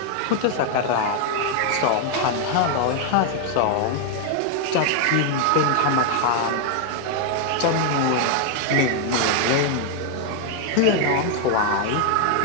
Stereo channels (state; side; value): different; both; correlation 0.00